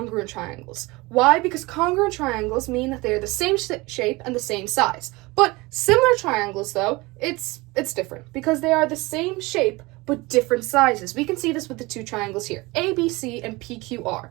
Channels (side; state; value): left; quieter; 23.0 dB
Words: triangles. Why? Because congruent triangles mean that they're the same shape and the same size. But similar triangles, though, it's different because they are the same shape but different sizes. We can see this with the two triangles here, ABC and PQR.